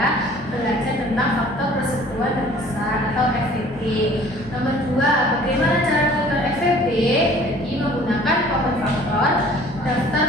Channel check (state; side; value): normal; both; correlation 0.51